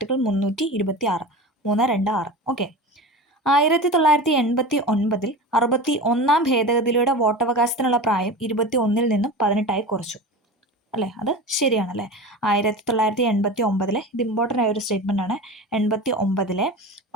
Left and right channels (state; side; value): normal; both; correlation 0.30